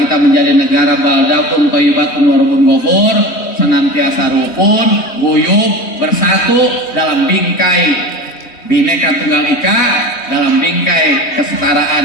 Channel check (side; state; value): right; late; 3.2 ms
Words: menjadi negara baldatun thayyibatun wa rabbun ghafur, senantiasa rukun, guyup, bersatu dalam bingkai Bhinneka Tunggal Ika, dalam bingkai